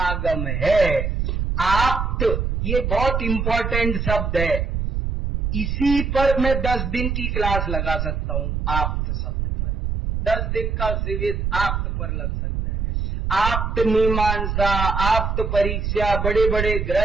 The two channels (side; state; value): right; noise; rumble, 1 dB below the sound